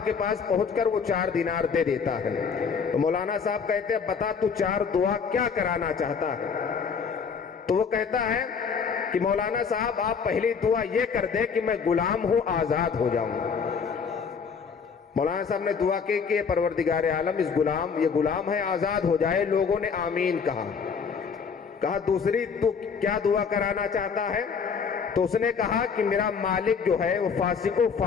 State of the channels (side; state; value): right; quieter; 6.0 dB